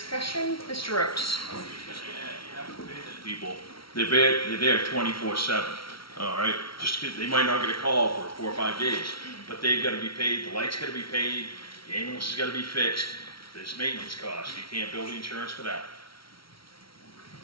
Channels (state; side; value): late; right; 0.74 ms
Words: Mr. Rhodes? People, they're there 24/7. All right, just they might not get a call for 4 or 5 days, but they've got to be paid. The light's got to be paid. The ambulance has got to be fixed. There's maintenance costs. You can't bill the insurance for that.